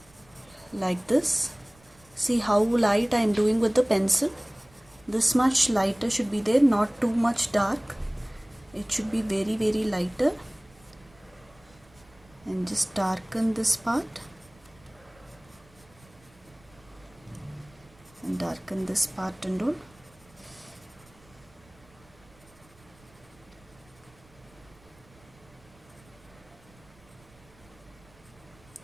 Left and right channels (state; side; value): noise; right; rumble, 28 dB below the sound